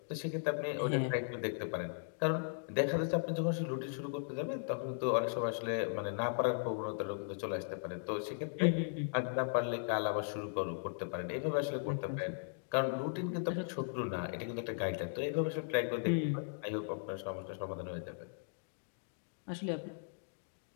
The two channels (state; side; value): silent; right; digital silence